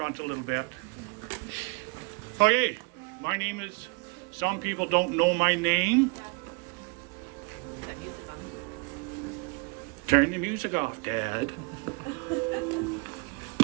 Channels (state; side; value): quieter; left; 29.2 dB